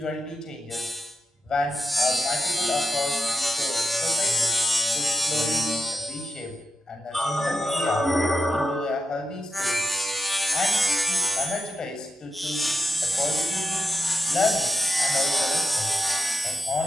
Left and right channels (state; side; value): normal; both; correlation 0.88